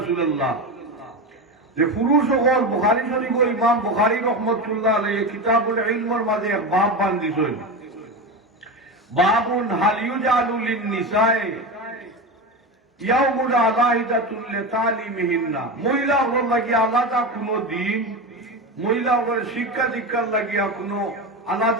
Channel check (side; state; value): both; normal; correlation 0.21